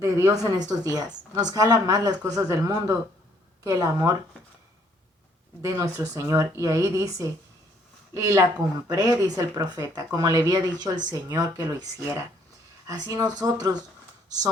en estos días. Nos jala más las cosas del mundo que el amor de nuestro Señor. Y ahí dice, y la compré, dice el profeta, como le había dicho el Señor que lo hiciera. Así nosotros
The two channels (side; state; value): both; normal; correlation 0.65